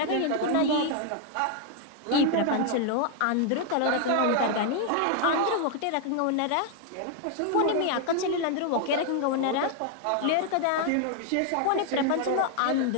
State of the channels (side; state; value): both; different; correlation 0.00